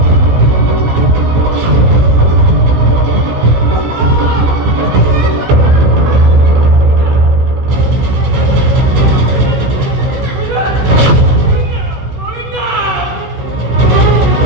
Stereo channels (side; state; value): left; late; 16 ms